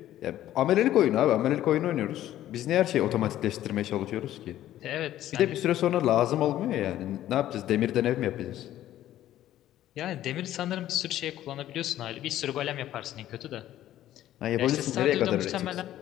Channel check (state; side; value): quieter; right; 13.0 dB